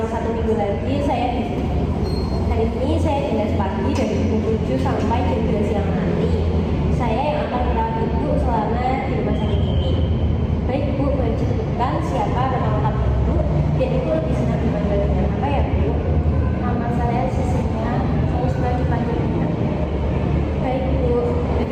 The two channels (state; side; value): identical; both; correlation 1.00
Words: 1 minggu lagi saya di sini. Hari ini saya dinas pagi dari pukul 7 sampai jam 2 siang nanti. Saya yang akan merawat ibu selama di rumah sakit ini. Baik Bu, boleh disebutkan siapa nama lengkap ibu dan ibu lebih senang dipanggil dengan apa ya Bu? Nama saya Sisinya, saya suka dipanggil Bunda. Baik Bu,